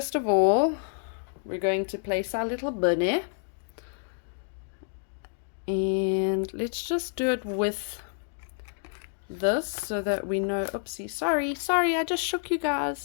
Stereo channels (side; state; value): right; silent; digital silence